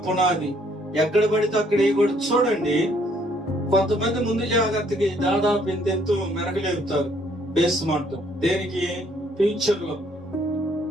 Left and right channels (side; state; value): both; normal; correlation 0.65